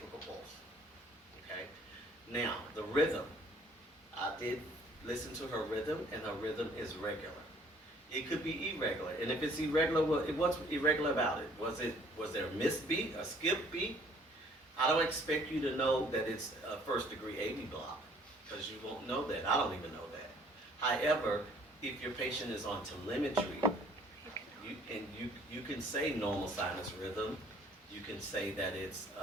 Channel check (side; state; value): both; normal; correlation 0.58